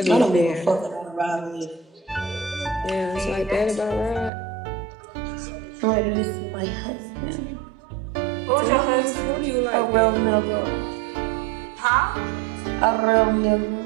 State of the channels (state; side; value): drops out; left; at 4.3 s